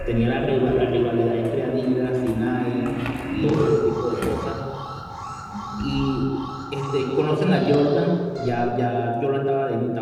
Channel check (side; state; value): both; identical; correlation 1.00